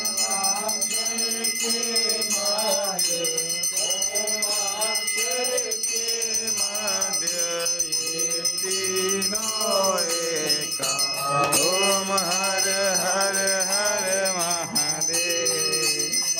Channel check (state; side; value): identical; both; correlation 1.00